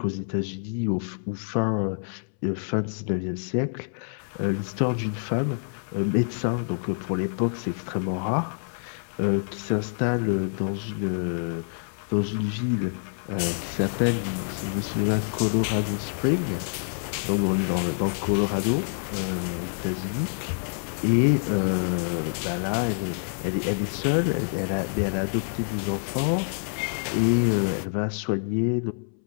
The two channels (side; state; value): right; silent; 60 dB below the other